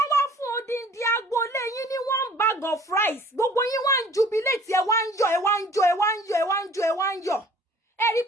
wá fún odindi agboolé yín ní 1 bag of rice, gbogbo yín wá ń jubilate, ẹ wá ń yọ̀. Ẹ rí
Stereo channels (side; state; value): both; normal; correlation 0.52